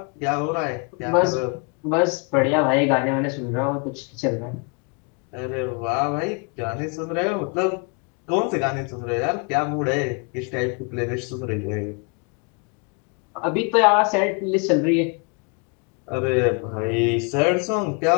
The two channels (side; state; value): right; quieter; 34.1 dB